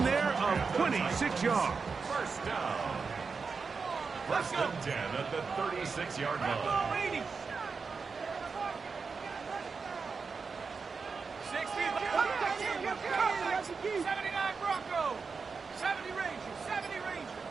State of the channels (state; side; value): quieter; left; 5.0 dB